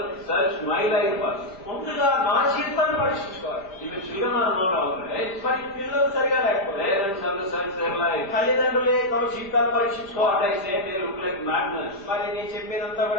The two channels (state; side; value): late; right; 5.1 ms